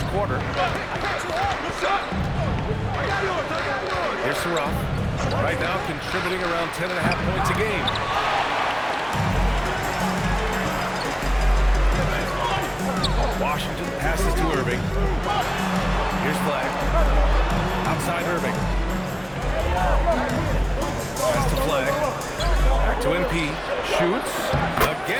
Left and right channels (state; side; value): identical; both; correlation 1.00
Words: quarter. Here's Saraf. Right now contributing around 10.5 points a game. Washington passes to Irving. Here's Flag. Outside Irving. Pass to Flag. Back to MP. Shoots.